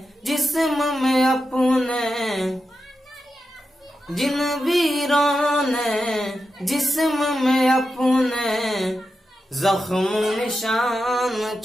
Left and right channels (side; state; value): both; normal; correlation 0.89